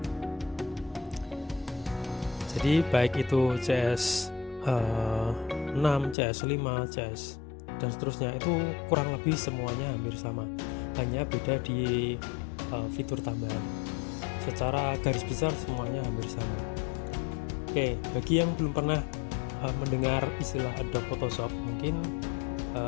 Jadi baik itu CS6, CS5, CS dan seterusnya itu kurang lebih semuanya hampir sama. Hanya beda di fitur tambahan. Secara garis besar semuanya hampir sama. Oke, bagi yang belum pernah mendengar istilah Adobe Photoshop, mungkin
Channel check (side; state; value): right; drops out; at 6.2 s